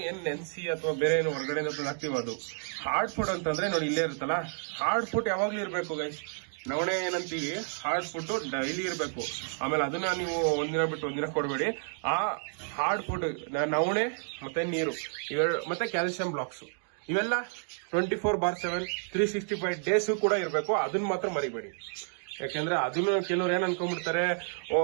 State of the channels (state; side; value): silent; left; 58 dB below the other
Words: ನೆನ್ಸಿ ಅಥವಾ ಬೇರೆ ಏನು ಹೊರಗಡೆ ಹಾಕ್ತೀವಿ ಅದು. ಹಾರ್ಡ್ ಫುಡ್ ಅಂತಂದ್ರೆ ನೋಡಿ ಇಲ್ಲೇ ಇರುತ್ತಲ್ಲ, ಹಾರ್ಡ್ ಫುಡ್ ಯಾವಾಗ್ಲೂ ಇರ್ಬೇಕು ಗೈಸ್. ನವಣೆ ಏನಂತೀವಿ, ಹಾರ್ಡ್ ಫುಡ್ ಡೈಲಿ ಇರಬೇಕು. ಆಮೇಲೆ ಅದನ್ನ ನೀವು ಒಂದಿನ ಬಿಟ್ಟು ಒಂದಿನ ಕೊಡಬೇಡಿ. ಆ ಹಾರ್ಡ್ ಫುಡ್ ನವಣೆ ಮತ್ತೆ ನೀರು ಮತ್ತೆ ಕ್ಯಾಲ್ಸಿಯಂ ಬ್ಲಾಕ್ಸ್ ಇವೆಲ್ಲ 24/7 365 ಡೇಸ್ ಕೂಡ ಇರಬೇಕು. ಅದನ್ನ ಮಾತ್ರ ಮರಿಬೇಡಿ. ಯಾಕಂದ್ರೆ ಅದನ್ನ ಕೆಲವ್ರು ಏನ್ ಅನ್ಕೊಂಡ್ಬಿಡ್ತಾರೆ,